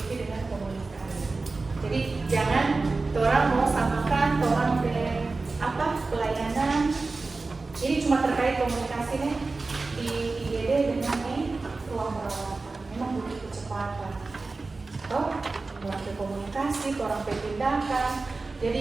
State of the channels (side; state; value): left; quieter; 3.7 dB